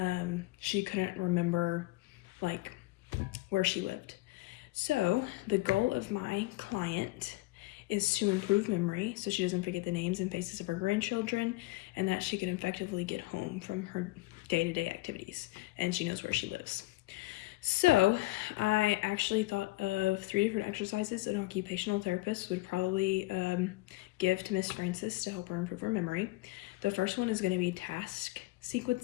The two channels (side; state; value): right; quieter; 20.6 dB